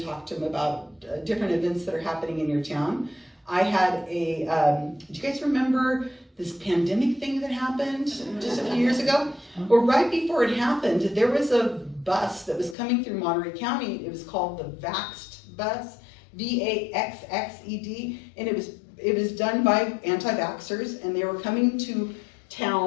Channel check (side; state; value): right; drops out; at 12.8 s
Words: talk to them about different events that are happening in your town. I had do you guys remember this pandemic thing that happened just a few years ago? Well, right before it happened, there was a bus that was coming through Monterey County. It was called the Vaxxed bus, VAXXED, and it was done by anti-vaxxers, and they were coming to